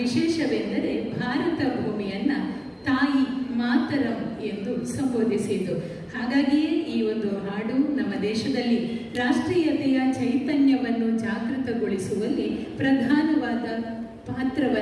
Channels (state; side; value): identical; both; correlation 1.00